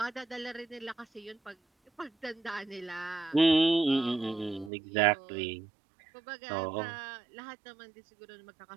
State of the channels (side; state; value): left; drops out; at 4.7 s